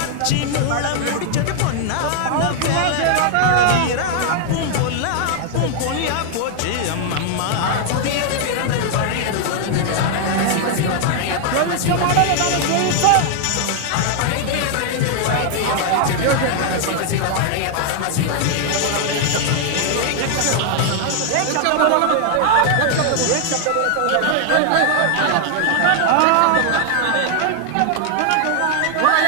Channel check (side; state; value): both; different; correlation 0.00